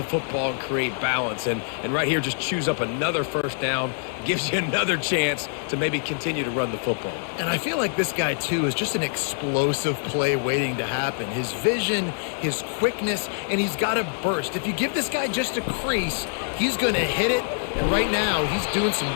football and create balance. And right here, just choose up another first down, gives you another chance to maybe continue to run the football. And I feel like this guy, too, is just an explosive play waiting to happen. His vision, his quickness, and he's got a burst. If you give this guy just a crease, he's going to hit it, And right now, he's doing some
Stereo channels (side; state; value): right; silent; digital silence